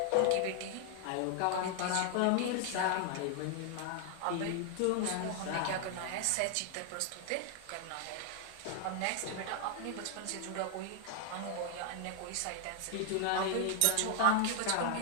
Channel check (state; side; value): different; both; correlation 0.00